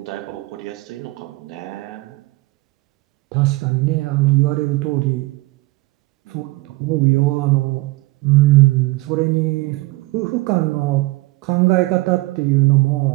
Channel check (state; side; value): quieter; left; 21.2 dB